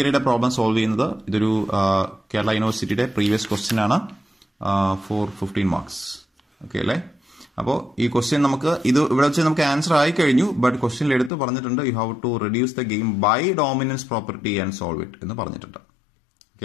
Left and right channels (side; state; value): right; drops out; at 11.3 s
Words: പ്രോബ്ലം സോൾവ് ചെയ്യുന്നത്. ഇതൊരു കേരള യൂണിവേഴ്സിറ്റിയുടെ പ്രീവിയസ് ക്വസ്റ്റ്യൻ ആണ്, 15 marks. ഓക്കെ അല്ലേ? അപ്പോൾ ഈ ക്വസ്റ്റ്യൻ നമുക്ക് ഇവിടെ വെച്ച് നമുക്ക് ആൻസർ ആയി കഴിഞ്ഞു, ബട്ട് ക്വസ്റ്റ്യനിൽ എടുത്ത് പറഞ്ഞിട്ടുണ്ട് you have to reduce the game by dominance property and solve it എന്ന് പറഞ്ഞിട്ടുണ്ട്. ഓക്കെ